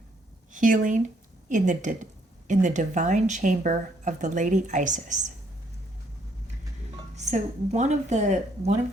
Healing in the divine chamber of the Lady Isis. So one of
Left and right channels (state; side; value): normal; both; correlation 0.69